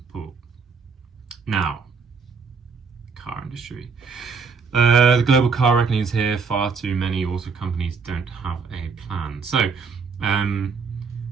Now, car industry. The global car reckoning is here. Far too many auto companies don't have a plan. So,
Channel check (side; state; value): left; quieter; 5.2 dB